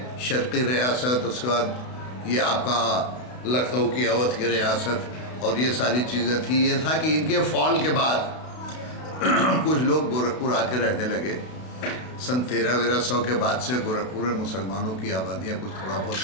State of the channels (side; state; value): right; late; 32 ms